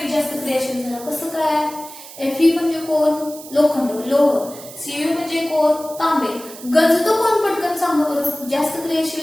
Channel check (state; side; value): noise; right; hiss, 16 dB below the sound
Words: जास्त क्रियाशील झाला. कसं काय Fe म्हणजे कोण लोखंड लोह. Cu म्हणजे कोण तांबे. गंजतो कोण पटकन सांगा बरं. जास्त